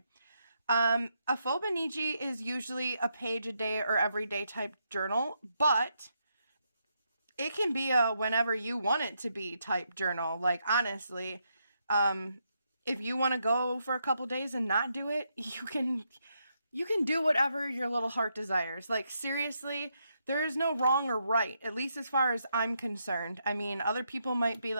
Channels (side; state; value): both; inverted; correlation -0.80